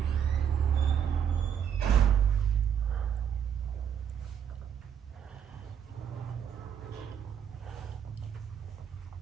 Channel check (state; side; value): quieter; left; 8.4 dB